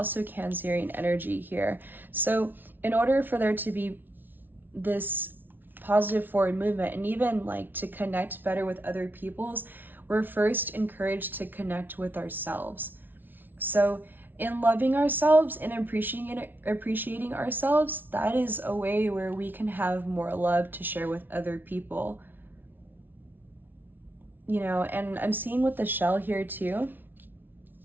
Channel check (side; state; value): left; late; 0.092 ms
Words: Cancerian energy here. So in order for there to be this positive forward movement, and even like to connect better with other people's, we're first encouraged to connect with ourselves. So in loving ourselves and appreciating ourselves, that is a way where we can have more love to share with other people. You know, and I'm seeing with the shell here too,